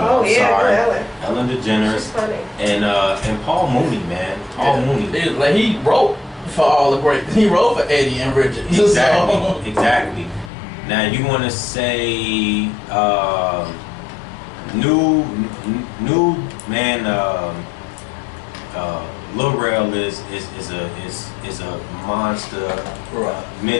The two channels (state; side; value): drops out; right; at 10.5 s